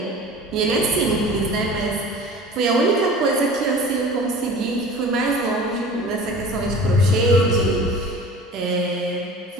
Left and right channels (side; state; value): both; normal; correlation 0.40